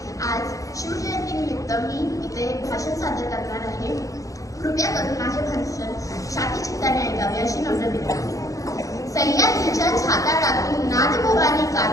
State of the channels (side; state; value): right; late; 0.16 ms